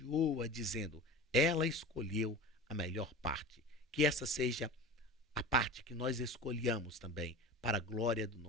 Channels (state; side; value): normal; both; correlation 0.33